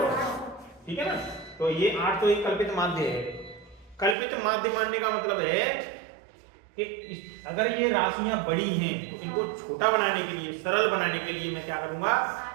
ठीक है ना। तो ये 800 एक कल्पित माध्य है। कल्पित माध्य मानने का मतलब है कि अगर ये राशियां बड़ी हैं तो इनको छोटा बनाने के लिए, सरल बनाने के लिए मैं क्या करूंगा?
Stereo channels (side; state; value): left; drops out; at 4.2 s